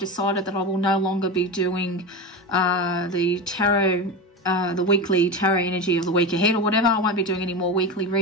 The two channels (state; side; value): normal; both; correlation 0.21